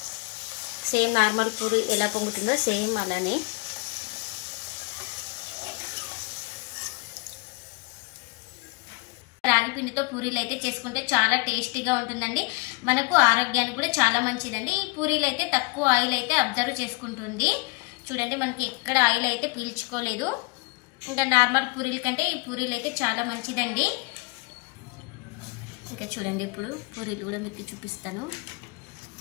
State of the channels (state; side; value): quieter; right; 28.6 dB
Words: సేమ్ నార్మల్ పూరి ఎలా పొంగుతుందో సేమ్ అలానే. రాగి పిండితో పూరీలు అయితే చేసుకుంటే చాలా టేస్టీగా ఉంటుందండి. మనకు ఆరోగ్యానికి కూడా చాలా మంచిదండి. ఈ పూరీలు అయితే తక్కువ ఆయిల్ అయితే అబ్జర్వ్ చేసుకుంటుంది. చూడండి మనకి ఎక్కడ ఆయిల్ అయితే పీల్చుకోలేదు. ఇంకా నార్మల్ పూరీల కంటే ఈ పూరీలు అయితే చాలా మంచిదండి. ఇంకా చూడండి ఇప్పుడు పూరీలు కూడా మీకు చూపిస్తాను.